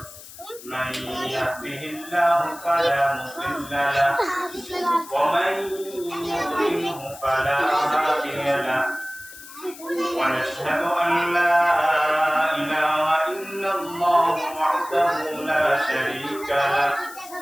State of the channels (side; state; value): left; noise; hiss, 17 dB below the sound